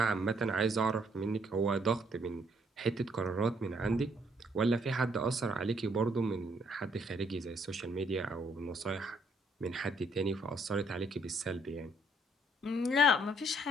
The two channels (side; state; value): both; normal; correlation 0.69